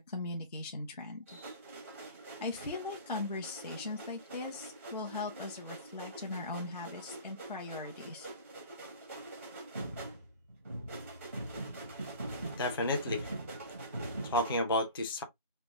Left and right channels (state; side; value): inverted; both; correlation -0.41